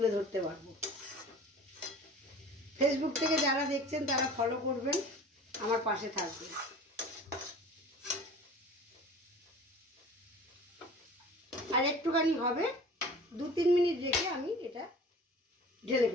ধরতে পারবো। ফেসবুক থেকে যারা দেখছেন তারা ফলো করবেন, আমার পাশে থাকবেন। আর একটুখানি হবে, 2-3 মিনিট রেখে আমি এটা ঢেলে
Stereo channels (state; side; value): normal; both; correlation 0.42